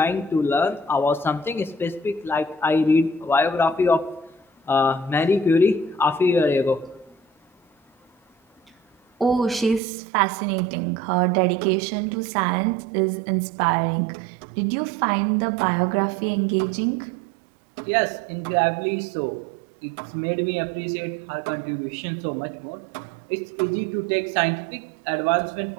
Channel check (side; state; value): left; drops out; at 9.8 s